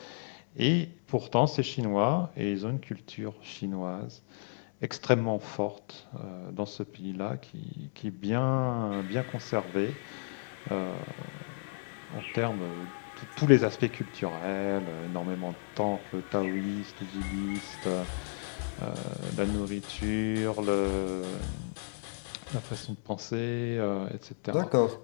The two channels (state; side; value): silent; right; digital silence